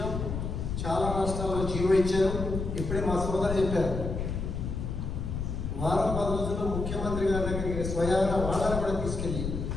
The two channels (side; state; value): left; noise; rumble, 4 dB below the sound